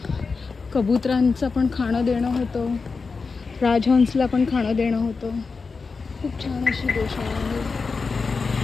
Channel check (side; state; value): right; quieter; 4.6 dB